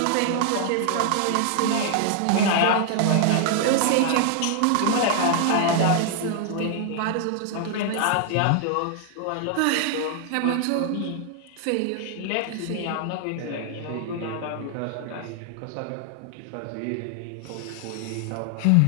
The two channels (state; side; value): different; both; correlation 0.00